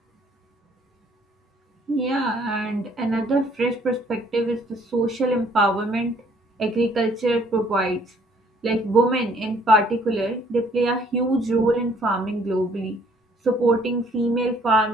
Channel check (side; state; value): both; normal; correlation 0.61